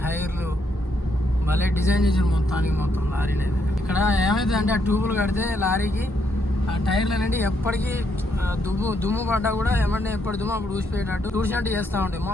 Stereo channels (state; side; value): normal; both; correlation 0.76